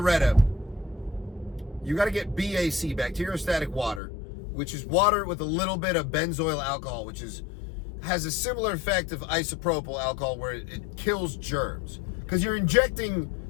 you got to get BAC, bacteriostatic water, which is water with a little bit of benzoyl alcohol, which has a similar effect of isopropyl alcohol where it kills germs. Because you're injecting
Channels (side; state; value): right; drops out; at 4.0 s